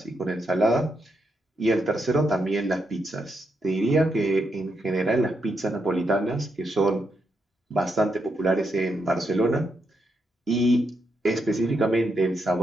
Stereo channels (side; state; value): both; normal; correlation 0.81